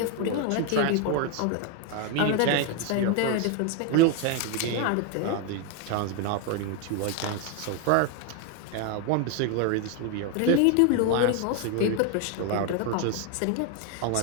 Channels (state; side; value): different; both; correlation 0.01